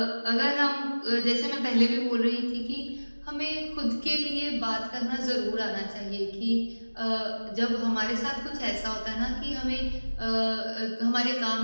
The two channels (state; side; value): inverted; both; correlation -1.00